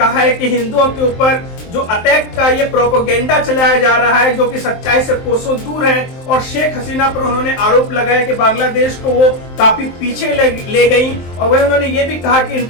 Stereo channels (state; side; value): late; right; 23 ms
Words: है कि हिंदुओं के ऊपर जो अटैक का ये प्रोपेगेंडा चलाया जा रहा है, जो कि सच्चाई से कोसों दूर है, और शेख हसीना पर उन्होंने आरोप लगाया कि बांग्लादेश को वो काफी पीछे ले गई। और वही उन्होंने ये भी कहा कि